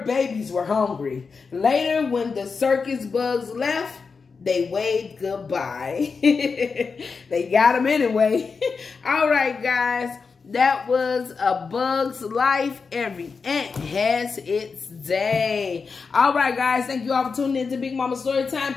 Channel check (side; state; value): right; quieter; 5.0 dB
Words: babies were hungry. Later, when the circus bugs left, they waved goodbye. They got him anyway. All right, guys. That was A Bug's Life. Every ant has its day. All right, guys. Thank you all for tuning in to Big Mama Storytime.